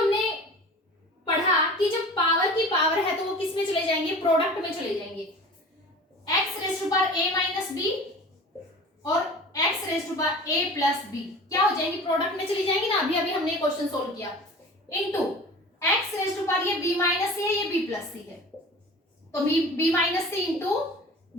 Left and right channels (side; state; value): both; normal; correlation 0.39